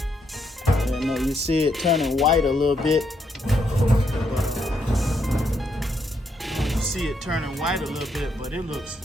Yeah, no, you see it turning white a little bit. You see it turning white a little bit, but it looks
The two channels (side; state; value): both; normal; correlation 0.77